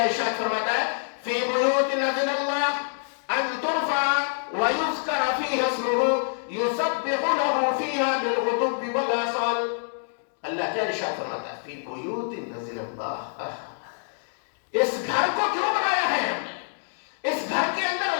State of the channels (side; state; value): right; silent; digital silence